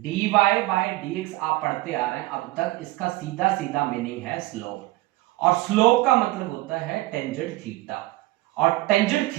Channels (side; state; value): left; quieter; 18.9 dB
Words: बाय dx आप पढ़ते आ रहे हैं अब तक, इसका सीधा सीधा मीनिंग है स्लोप, और स्लोप का मतलब होता है टेंजेंट थीटा, और टेंजेंट